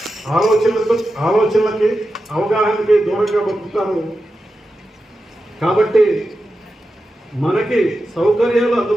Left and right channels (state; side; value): normal; both; correlation 0.91